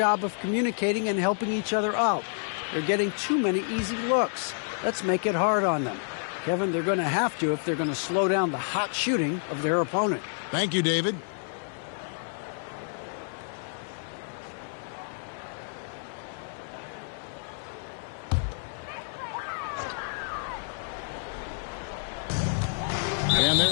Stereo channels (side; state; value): right; silent; 59 dB below the other